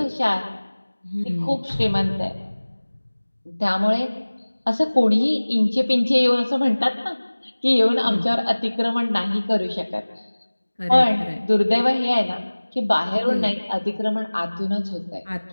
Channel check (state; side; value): inverted; both; correlation -1.00